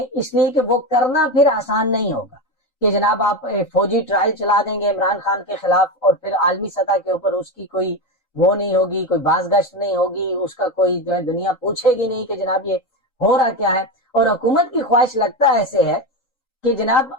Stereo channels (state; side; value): late; right; 3.9 ms